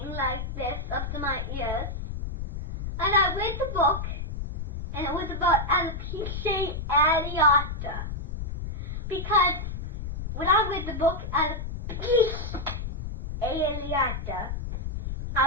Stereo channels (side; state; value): left; noise; rumble, 5 dB below the sound